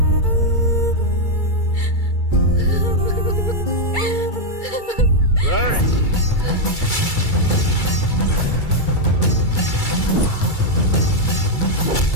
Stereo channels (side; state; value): right; late; 2.3 ms